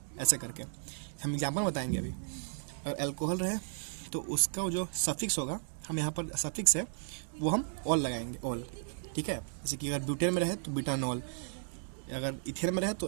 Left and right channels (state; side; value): silent; left; digital silence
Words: ऐसे करके हम एग्जाम्पल बताएंगे अभी। अगर एल्कोहल रहे तो उसका जो सफिक्स होगा, हम यहाँ पर सफिक्स है वो हम ऑल लगाएंगे, ऑल, ठीक है। जैसे कि अगर ब्यूटेन में रहे तो ब्यूटानॉल, अगर इथेन में रहे तो